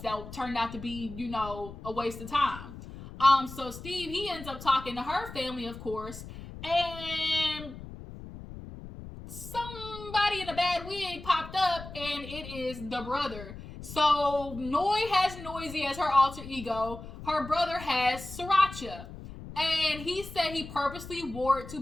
that turned out to be, you know, a waste of time. So Steve, he ends up talking to her family, of course, and somebody in a bad wig popped up, and it is the brother. So Noy has Noisy as her alter ego. Her brother has Sriracha. And he said he purposely wore it to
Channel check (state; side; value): noise; left; rumble, 13 dB below the sound